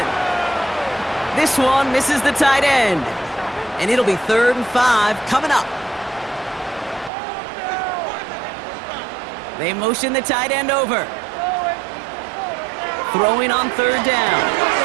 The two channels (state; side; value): drops out; left; at 7.1 s